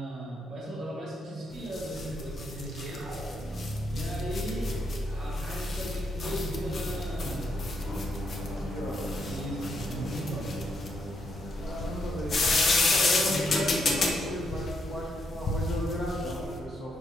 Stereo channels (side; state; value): both; normal; correlation 0.78